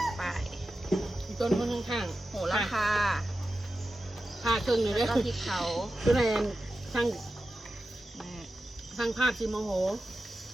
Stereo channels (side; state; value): both; normal; correlation 0.93